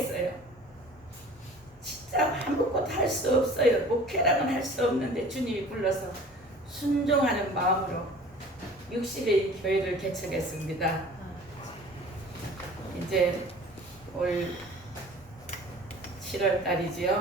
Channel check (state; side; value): normal; both; correlation 0.45